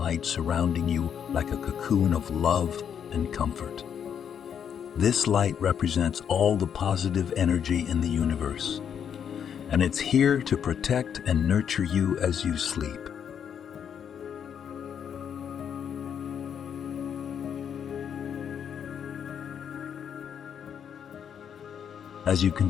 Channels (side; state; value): right; quieter; 8.1 dB